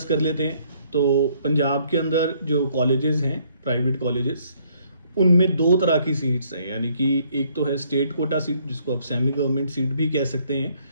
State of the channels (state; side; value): inverted; both; correlation -0.66